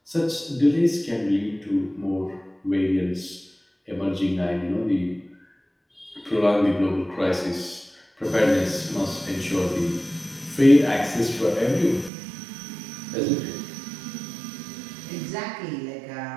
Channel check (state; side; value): drops out; left; at 12.1 s